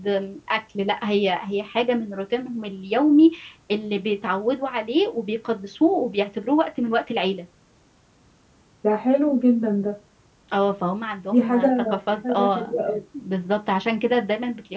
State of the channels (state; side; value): identical; both; correlation 1.00